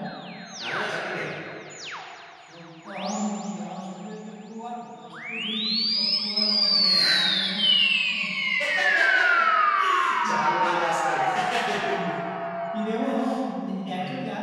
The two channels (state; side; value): identical; both; correlation 1.00